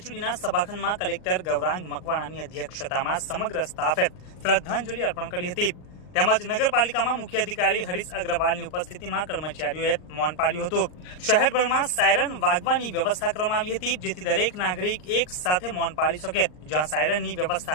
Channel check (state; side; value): late; right; 39 ms